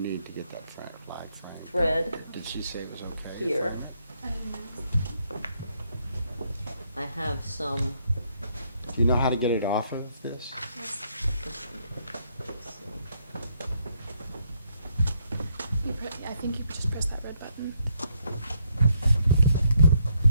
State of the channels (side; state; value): both; inverted; correlation -0.73